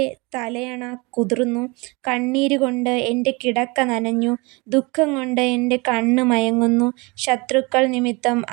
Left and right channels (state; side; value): quieter; left; 26.6 dB